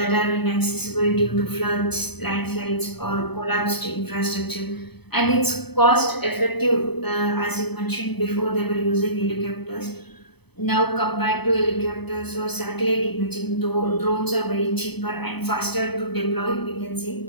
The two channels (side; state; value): right; late; 0.98 ms